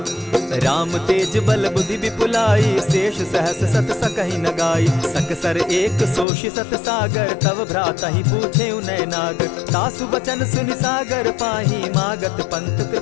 राम तेज बल बुद्धि विपुलाई, शेष सहस सत सकहि न गाई। सकसर एक सोषि सत सागर, तव भ्रातहि पूछे उनय नागर। तासु बचन सुनि सागर पाही, मागत पंत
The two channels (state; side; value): drops out; right; at 6.2 s